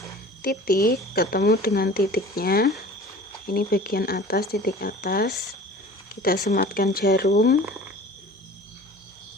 titik ketemu dengan titiknya, ini bagian atas, titik atas, kita sematkan jarum.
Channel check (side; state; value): both; normal; correlation 0.43